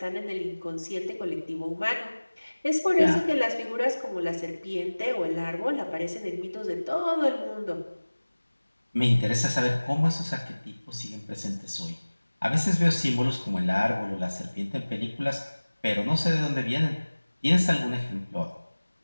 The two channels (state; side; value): inverted; both; correlation -1.00